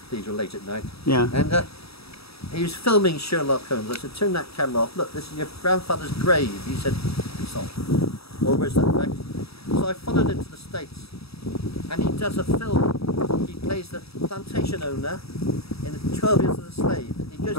late at night. Yeah. And he was filming Sherlock Holmes. I said, turn that camera off. Look, this is your grandfather's grave. He said, it's off. Or where's that effect? So I followed him to the States. And he does a film. He plays the plantation owner in 12 Years as a Slave. He goes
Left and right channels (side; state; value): right; late; 0.77 ms